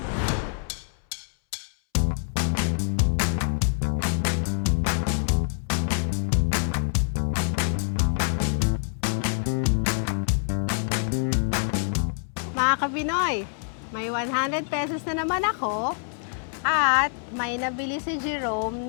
Mga Kapinoy, may 100 pesos na naman ako at may nabili si Jerome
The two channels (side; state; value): right; silent; 61 dB below the other